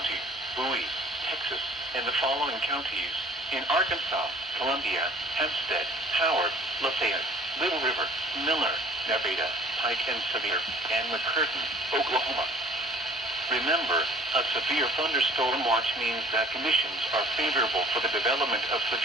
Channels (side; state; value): both; normal; correlation 0.50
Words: Bowie, Texas, and the following counties in Arkansas: Columbia, Hempstead, Howard, Lafayette, Little River, Miller, Nevada, Pike and Sevier, and McCurtain, Oklahoma. Remember, a severe thunderstorm watch means that conditions are favorable for the development of